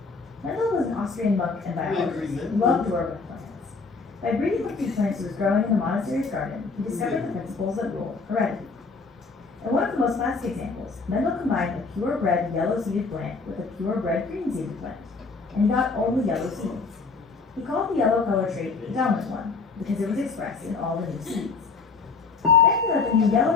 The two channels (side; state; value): right; quieter; 4.4 dB